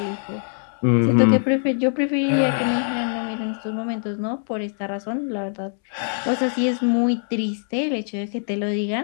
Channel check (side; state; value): right; silent; 63 dB below the other